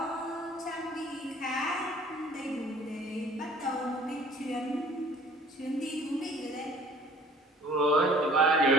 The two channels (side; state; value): both; normal; correlation 0.51